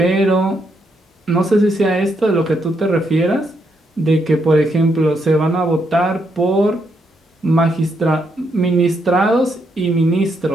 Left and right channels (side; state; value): both; normal; correlation 0.78